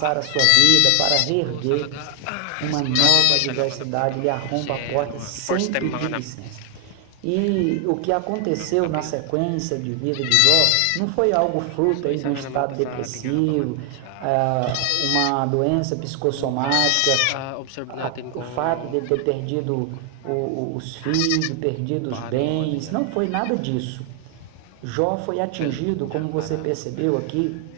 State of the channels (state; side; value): different; both; correlation 0.00